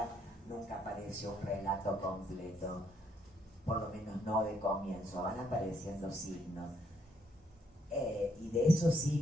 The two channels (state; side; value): normal; both; correlation 0.72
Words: nunca apareció un relato completo, por lo menos no de comienzo, van apareciendo signos. Y de esos